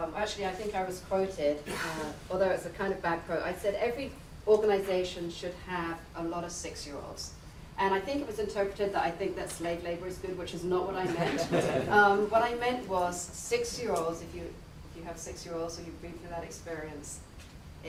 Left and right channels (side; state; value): both; identical; correlation 1.00